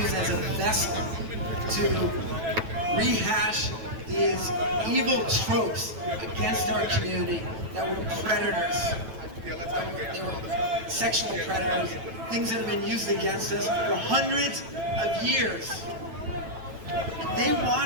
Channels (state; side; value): late; left; 9.1 ms